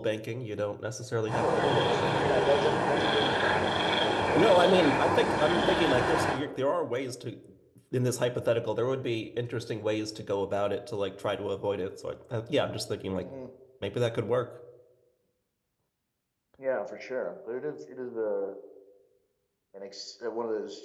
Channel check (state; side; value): identical; both; correlation 1.00